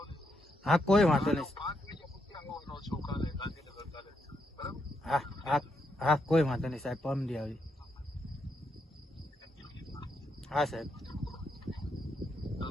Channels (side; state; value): both; normal; correlation 0.80